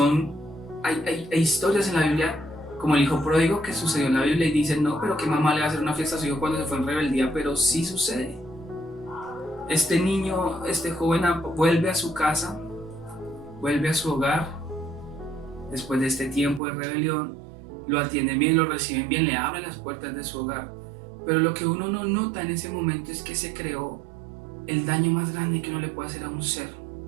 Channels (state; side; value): drops out; left; at 16.6 s